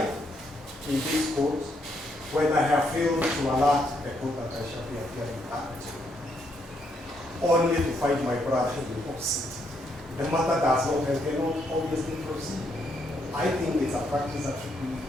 in this court when I have failed to alert the court that I shall be appearing at, only to find my brother in the opposite. The matter does not and cannot obviously proceed. I think it's a practice that should be.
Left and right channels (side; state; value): both; normal; correlation 0.75